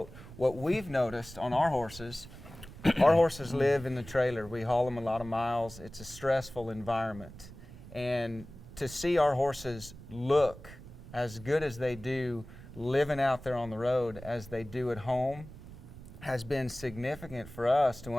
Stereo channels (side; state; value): right; noise; rumble, 16 dB below the sound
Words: What we've noticed on our horses live in the trailer. We haul them a lot of miles. It's a stressful environment. And to see our horses look as good as they do living out there on the road as they do at home has been significant for us to